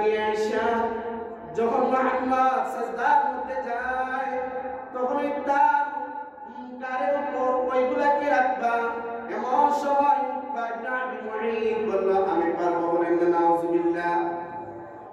আইসা যখন মুহাম্মদ সাজদার মধ্যে যায় তখনই তার কারের উপর ওইগুলাকে রাখবা। এমন সময় বলল, আমি পারবো, বলেন নাউজুবিল্লাহ।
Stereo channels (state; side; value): identical; both; correlation 1.00